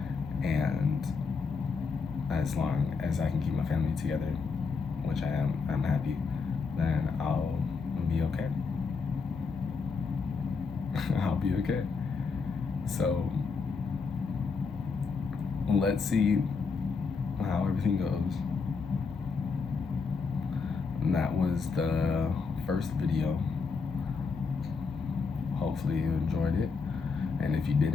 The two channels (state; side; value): quieter; right; 4.9 dB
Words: and as long as I can keep my family together, which I am, I'm happy, then I'll be okay. I'll be okay. So let's see how everything goes. And that was the first video. Hopefully you enjoyed it, and if you